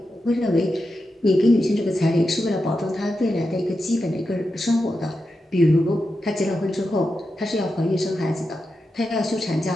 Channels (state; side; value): normal; both; correlation 0.89